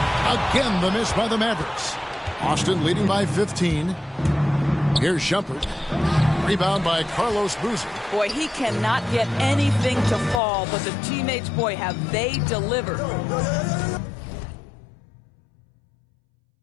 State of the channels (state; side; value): drops out; right; at 10.4 s